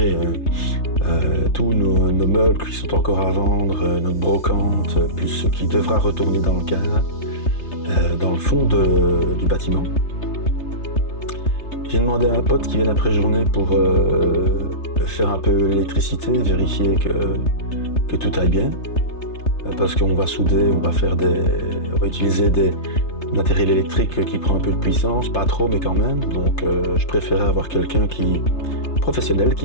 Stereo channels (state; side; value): late; right; 3.3 ms